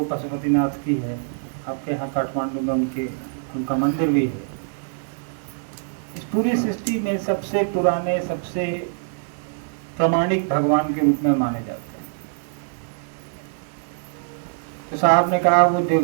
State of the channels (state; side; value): silent; left; digital silence